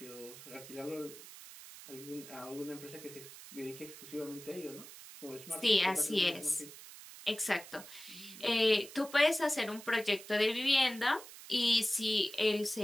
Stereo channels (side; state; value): right; noise; hiss, 15 dB below the sound